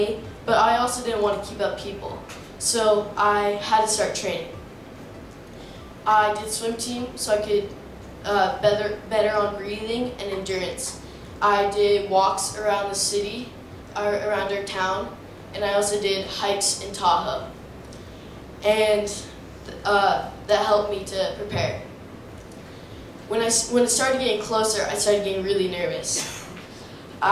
but I also didn't want to keep up people. So I had to start training. I did swim team so I could better on breathing and endurance. I did walks around the city, around our town, and I also did hikes in Tahoe. And that helped me to prepare. When it started getting closer, I started getting really nervous.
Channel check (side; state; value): both; identical; correlation 1.00